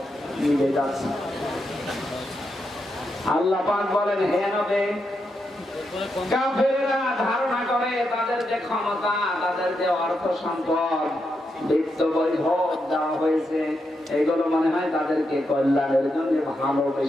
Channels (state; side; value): normal; both; correlation 0.84